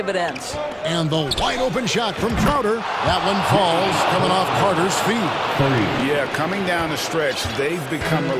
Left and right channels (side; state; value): both; identical; correlation 1.00